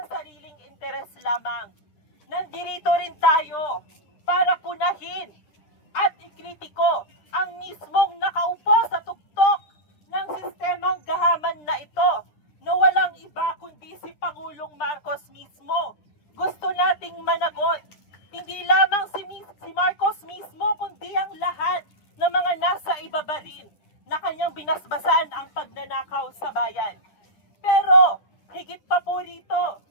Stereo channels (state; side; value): late; right; 9.9 ms